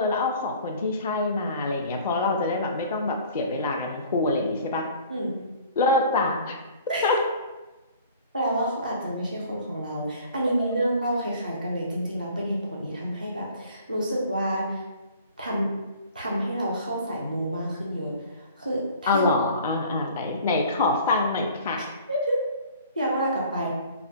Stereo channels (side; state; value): both; inverted; correlation -0.49